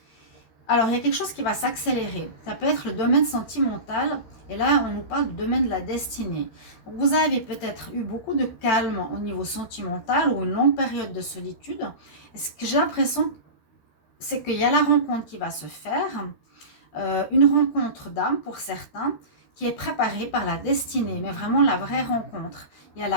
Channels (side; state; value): right; late; 13 ms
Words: Alors, il y a quelque chose qui va s'accélérer. Ça peut être le domaine sentimental. Et là, on nous parle du domaine de la destinée. Donc, vous avez peut-être eu beaucoup de calme au niveau sentimental ou une longue période de solitude. Et ce que j'ai l'impression, c'est qu'il y a la rencontre qui va se faire. Une rencontre d'âme pour certains qui est préparée par la destinée. Mais vraiment la vraie rencontre. Il y a